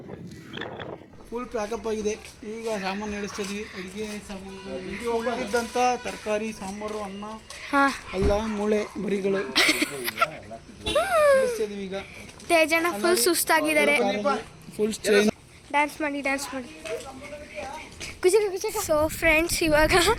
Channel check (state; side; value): identical; both; correlation 1.00